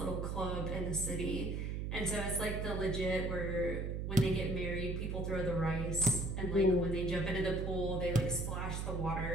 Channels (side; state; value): right; noise; hum, 2 dB below the sound